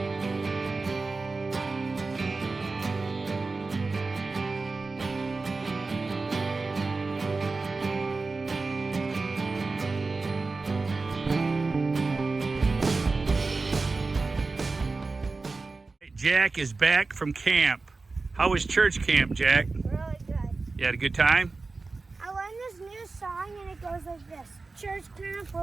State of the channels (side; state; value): left; quieter; 3.8 dB